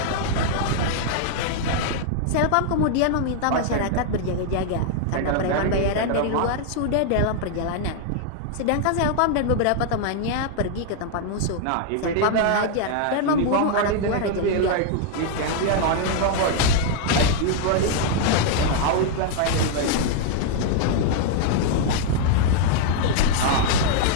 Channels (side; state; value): both; different; correlation 0.00